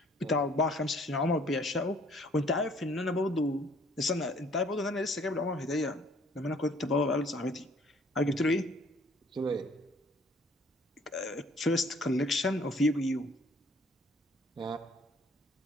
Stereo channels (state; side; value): normal; both; correlation 0.59